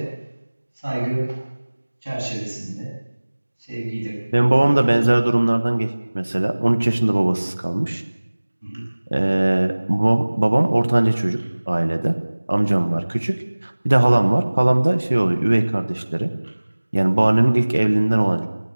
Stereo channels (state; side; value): inverted; both; correlation -1.00